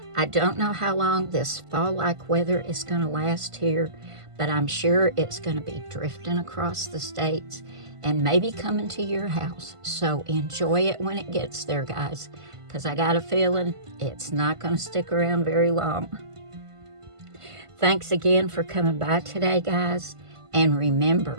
I don't know how long this fall-like weather is going to last here, but I'm sure it's going to be drifting across the states and maybe coming to your house. So enjoy it when it gets there, guys, because I got a feeling it's not going to stick around very long. Thanks again for coming by today, guys. And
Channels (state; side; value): late; left; 1.5 ms